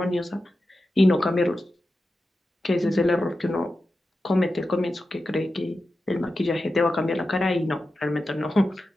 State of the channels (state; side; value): normal; both; correlation 0.91